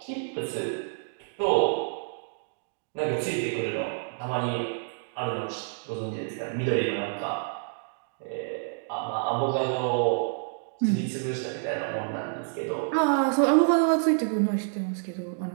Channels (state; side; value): silent; left; digital silence